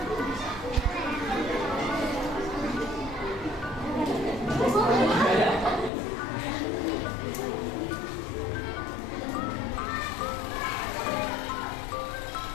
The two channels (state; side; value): drops out; right; at 5.9 s